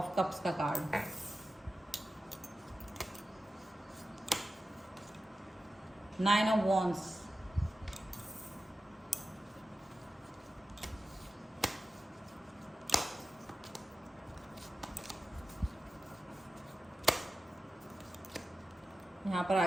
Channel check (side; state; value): both; normal; correlation 0.93